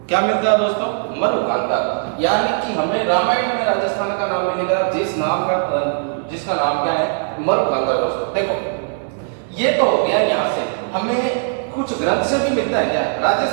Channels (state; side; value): silent; left; 64 dB below the other